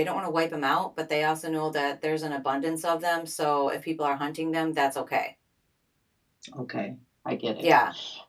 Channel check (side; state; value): both; identical; correlation 1.00